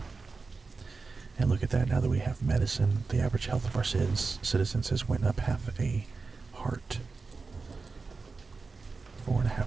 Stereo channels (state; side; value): quieter; left; 4.2 dB